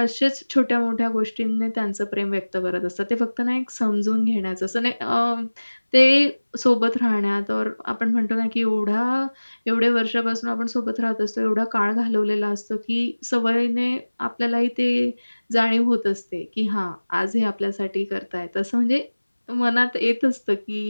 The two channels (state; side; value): inverted; both; correlation -1.00